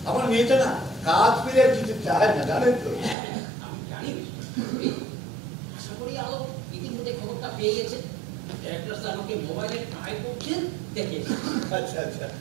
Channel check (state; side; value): drops out; left; at 3.2 s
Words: আমার মেয়েটা না কাজ পেলে কিছু চায় না, জানেন তো। আমি জানি, আশা করি আলো ইতিমধ্যে খবরটা পেয়ে গেছে। ডাইরেক্টর স্যার আমাকে মোবাইলে ট্রাই করছেন, দেখে। আচ্ছা আচ্ছা।